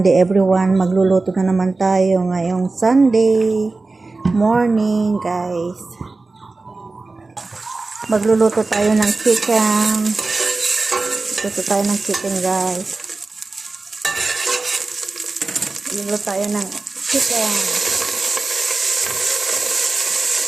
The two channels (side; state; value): left; quieter; 3.6 dB